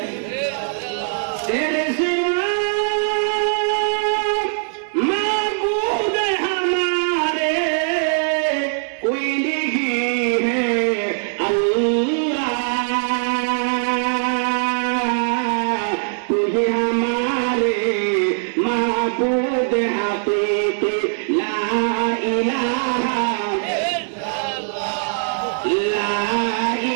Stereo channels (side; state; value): left; silent; digital silence